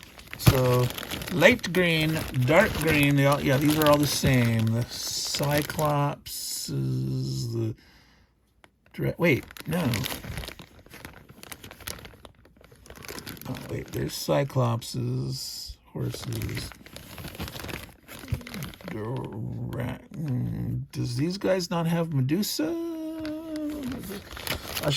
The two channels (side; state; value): both; identical; correlation 1.00